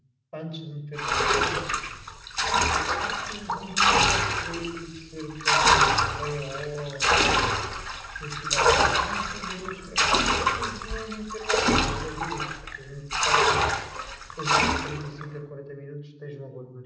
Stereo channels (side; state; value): both; identical; correlation 1.00